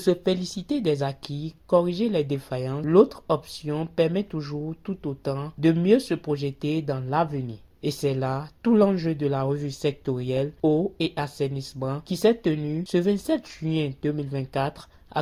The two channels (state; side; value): identical; both; correlation 1.00